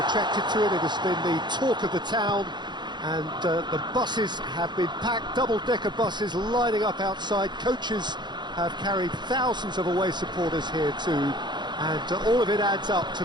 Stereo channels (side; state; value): left; late; 0.21 ms